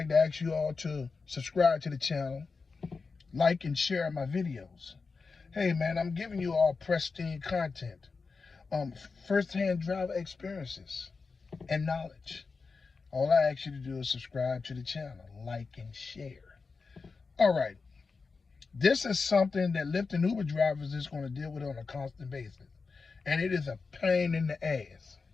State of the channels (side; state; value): right; quieter; 4.5 dB